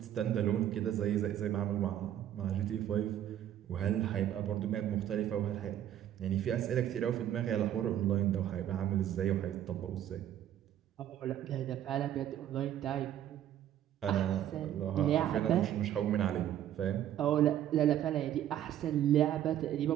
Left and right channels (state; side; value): quieter; left; 11.2 dB